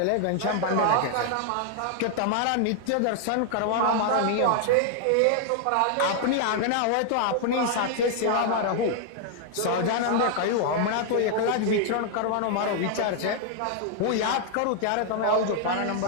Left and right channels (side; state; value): both; different; correlation 0.00